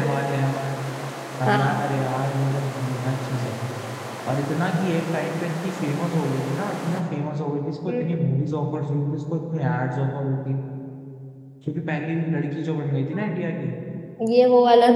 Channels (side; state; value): both; identical; correlation 1.00